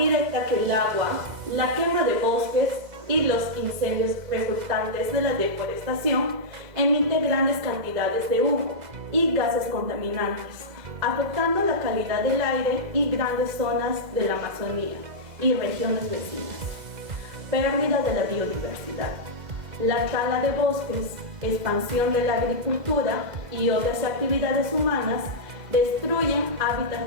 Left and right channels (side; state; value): left; late; 2.0 ms